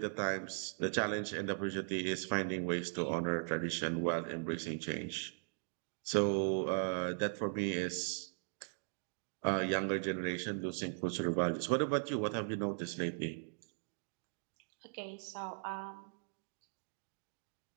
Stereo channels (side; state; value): left; silent; digital silence